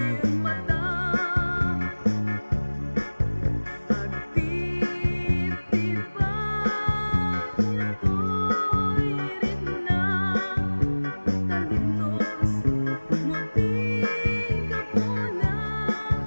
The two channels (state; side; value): inverted; both; correlation -1.00